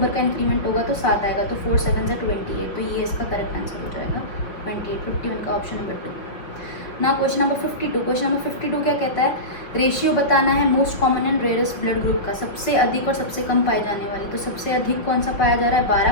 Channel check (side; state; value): right; late; 5.9 ms